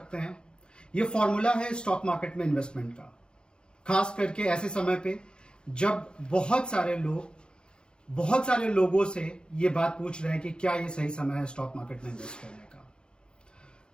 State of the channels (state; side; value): late; right; 0.050 ms